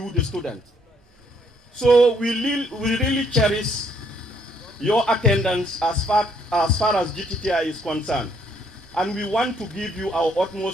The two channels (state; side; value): normal; both; correlation 0.68